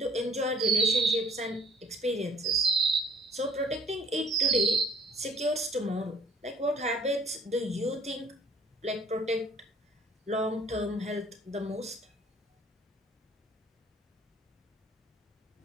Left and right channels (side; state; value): both; normal; correlation 0.57